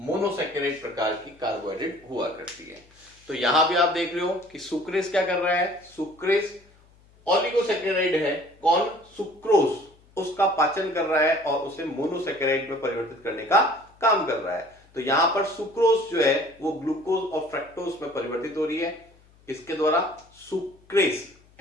प्रकार की कार्बोहाइड्रेट हुआ करती है। तो यहां भी आप देख रहे हो कि सुक्रेज क्या कर रहा है? सुक्रेज ओलिगोसेकेराइड है, कौन? सुक्रोज, उसका पाचन कर रहा है और उसे मोनोसेकेराइड में परिवर्तित करने का काम कर रहा है। तो यहां पर सुक्रोज जो है वो ग्लूकोज और फ्रक्टोज में परिवर्तित हो रही है, किसके द्वारा? सुक्रेज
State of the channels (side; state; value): left; noise; hum, 29 dB below the sound